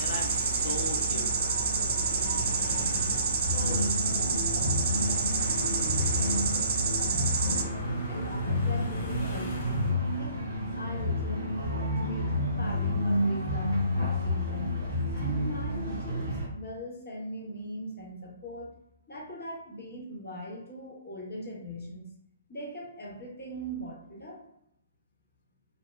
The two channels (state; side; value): inverted; both; correlation -0.56